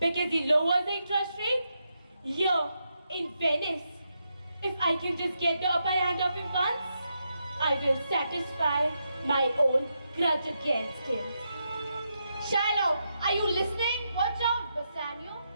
he lowers the interest rate here in Venice. If I can just get the upper hand of him once, I will satisfy my own grudge against him. Shylock, are you listening? Watch out, Bassanio.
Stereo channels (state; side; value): inverted; both; correlation -0.83